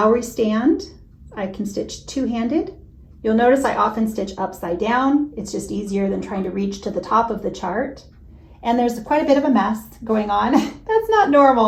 stand. I can stitch two-handed. You'll notice I often stitch upside down. It's just easier than trying to reach to the top of the chart. And there's quite a bit of a mess going on. That's not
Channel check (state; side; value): identical; both; correlation 1.00